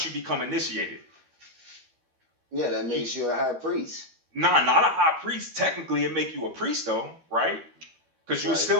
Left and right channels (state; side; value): late; left; 13 ms